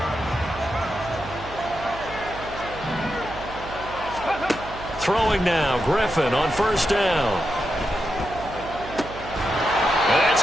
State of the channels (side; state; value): right; noise; hum, 14 dB below the sound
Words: Throwing now, Griffin on first down. That's